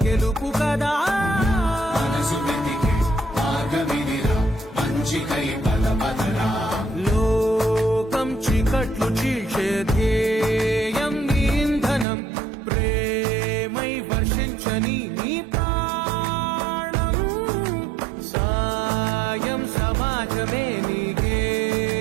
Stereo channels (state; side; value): drops out; left; at 12.1 s